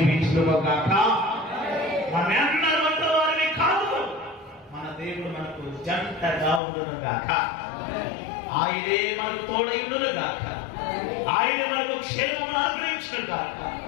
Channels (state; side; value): drops out; right; at 6.6 s